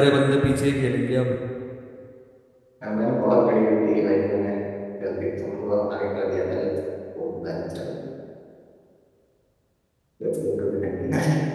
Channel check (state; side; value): identical; both; correlation 1.00